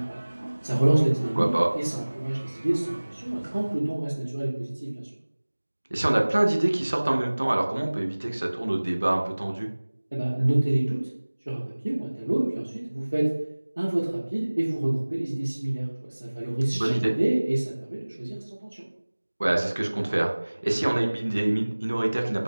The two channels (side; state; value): both; inverted; correlation -1.00